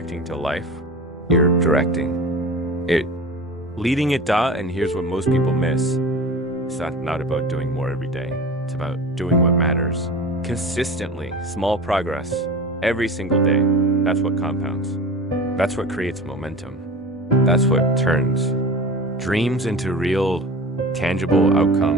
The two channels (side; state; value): both; normal; correlation 0.34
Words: to life, you're directing it, leading it. And here's what most people miss. It's not about doing more every day. It's about doing what matters. Consistently, small progress, every single day. That's what compounds. That's what creates momentum. That's what turns dreams into real, tangible